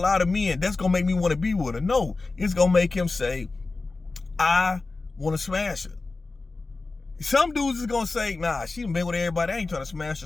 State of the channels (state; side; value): quieter; right; 3.6 dB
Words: of men, that's gonna make me want to be with her. No, it's gonna make him say, I want to smash her. Some dudes is gonna say, nah, she done been with everybody, I ain't trying to smash